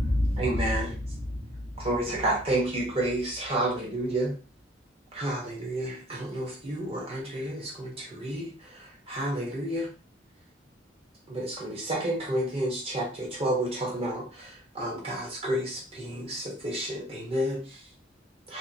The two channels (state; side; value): normal; both; correlation 0.54